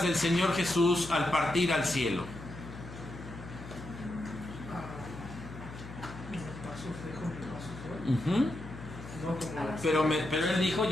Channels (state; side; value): noise; left; hum, 13 dB below the sound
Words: del Señor Jesús al partir al cielo? Pero él dijo: